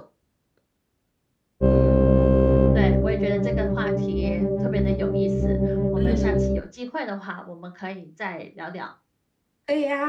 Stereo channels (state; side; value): identical; both; correlation 1.00